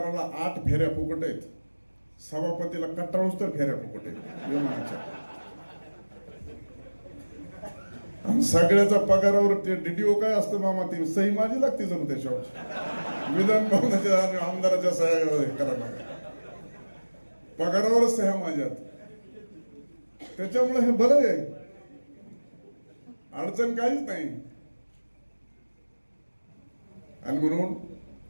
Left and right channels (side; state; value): both; inverted; correlation -1.00